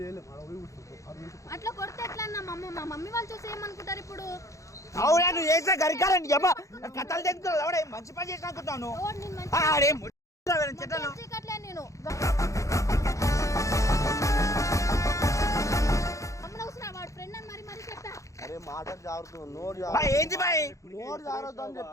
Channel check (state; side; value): late; right; 0.15 ms